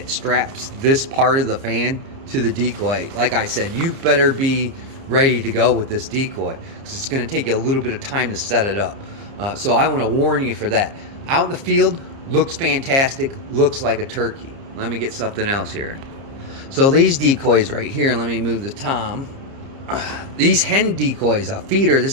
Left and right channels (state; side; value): late; left; 30 ms